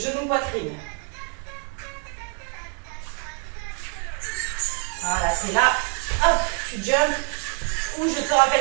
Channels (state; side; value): quieter; left; 37.7 dB